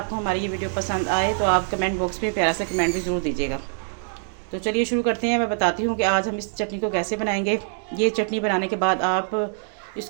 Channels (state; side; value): silent; left; digital silence